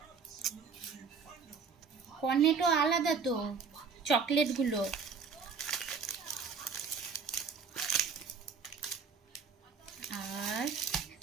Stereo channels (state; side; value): quieter; left; 5.5 dB